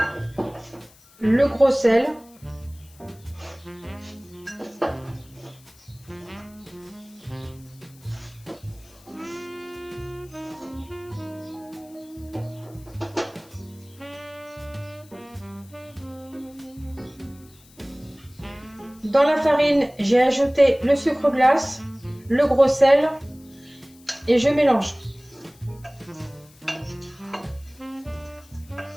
le gros sel, dans la farine, j'ai ajouté le sucre glace, le gros sel et je mélange.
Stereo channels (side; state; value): left; noise; hiss, 26 dB below the sound